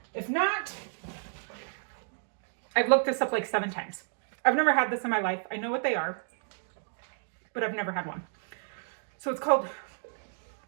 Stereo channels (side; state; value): left; silent; 57 dB below the other